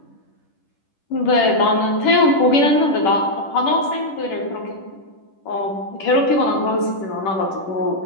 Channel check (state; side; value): late; right; 10 ms